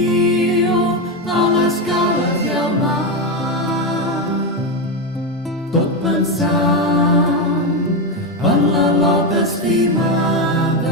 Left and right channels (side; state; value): both; normal; correlation 0.11